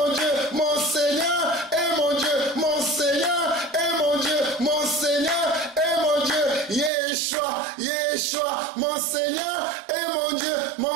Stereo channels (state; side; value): drops out; left; at 6.9 s